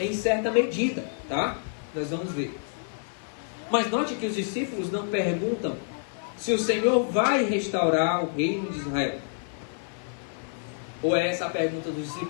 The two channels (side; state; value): right; silent; 55 dB below the other